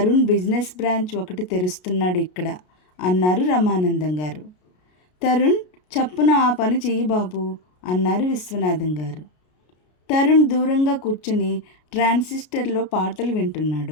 బిజినెస్ బ్రాంచ్ ఒకటి తెరుస్తున్నాడు ఇక్కడ అన్నారు రమానందం గారు. తరుణ్, చప్పున ఆ పని చెయ్యి బాబు అన్నారు విశ్వనాథం గారు. తరుణ్ దూరంగా కూర్చుని ట్రాన్సిస్టర్లో పాటలు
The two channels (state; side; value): late; right; 33 ms